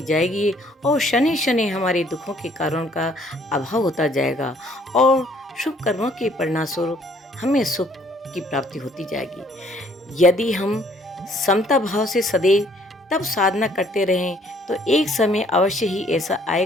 जाएगी और शनि शनि हमारे दुखों के कारण का अभाव होता जाएगा और शुभ कर्मों के परिणामस्वरूप हमें सुख की प्राप्ति होती जाएगी। यदि हम समता भाव से सदैव तब साधना करते रहें तो एक समय अवश्य ही ऐसा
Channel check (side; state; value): both; normal; correlation 0.62